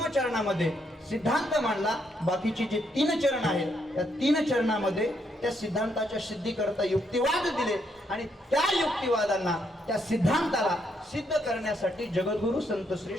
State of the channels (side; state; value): both; normal; correlation 0.75